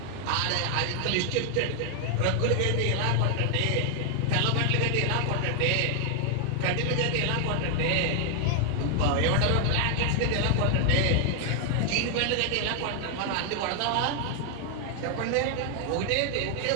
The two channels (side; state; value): both; different; correlation 0.00